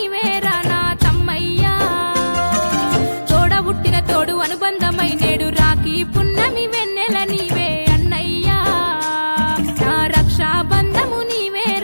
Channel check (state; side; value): inverted; both; correlation -1.00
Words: నా తమ్మయ్యా తోడబుట్టిన తోడు అనుబంధమై నేడు రాఖీ పున్నమి వెన్నెల నీవే అన్నయ్యా నా రక్షాబంధము